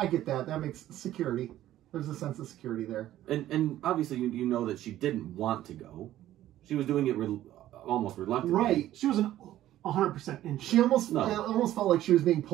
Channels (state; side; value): quieter; left; 13.5 dB